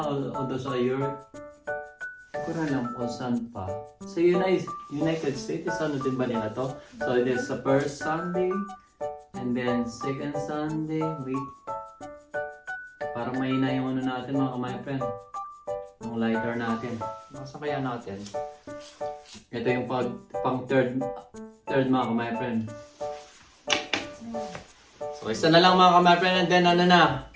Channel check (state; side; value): identical; both; correlation 1.00